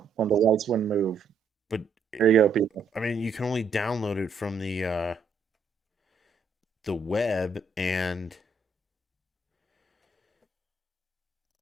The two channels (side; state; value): left; quieter; 4.3 dB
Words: the lights wouldn't move. but There you go, people. I mean, you can only download it from the web, and